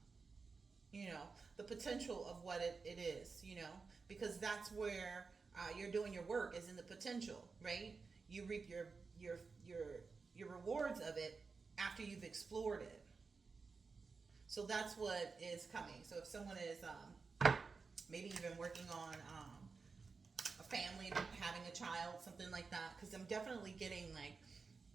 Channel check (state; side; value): quieter; left; 4.6 dB